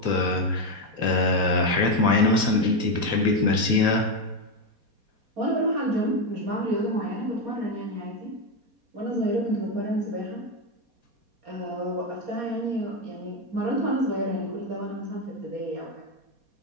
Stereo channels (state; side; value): late; left; 4.2 ms